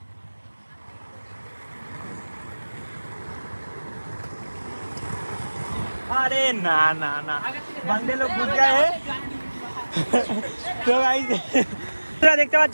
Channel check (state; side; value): inverted; both; correlation -1.00